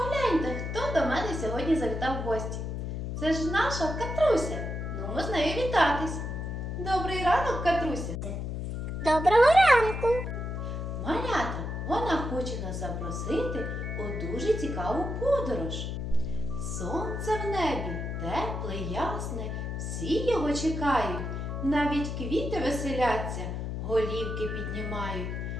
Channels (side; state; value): left; noise; hum, 4 dB below the sound